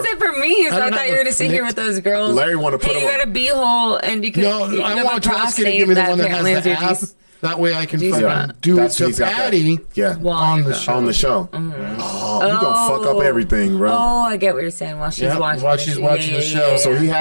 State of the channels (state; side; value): inverted; both; correlation -1.00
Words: said for me, so I thought you were going to sit here with those girls. Larry want to put hey, you got a beehole, and you can. No, you I have want a Tawaski to give me the one that apparently has the is your app. G- That way I can G-spot. fucking do it to he's got that. Patty Yeah. on the show. On the show. Oh, you gonna fuck up everything, bro. Oh, I get what you're saying. While she's Yeah, watching, while she's watching the show. So he